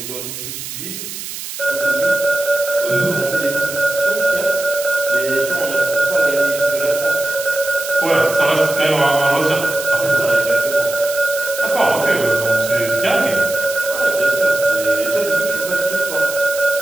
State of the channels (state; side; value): noise; right; hiss, 9 dB below the sound